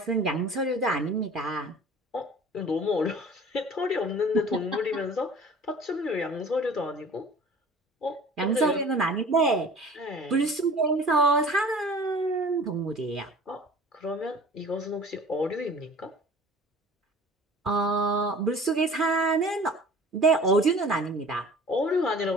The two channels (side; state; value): both; normal; correlation 0.45